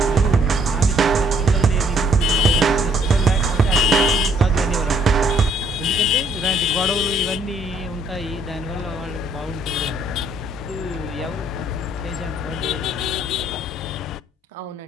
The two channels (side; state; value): both; normal; correlation 0.64